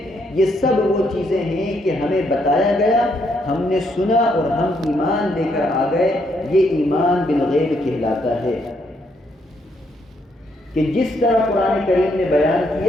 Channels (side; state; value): both; normal; correlation 0.74